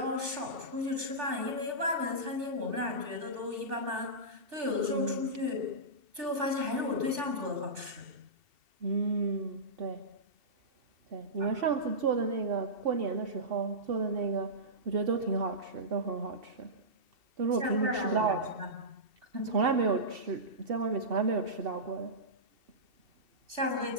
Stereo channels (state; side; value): late; left; 2.7 ms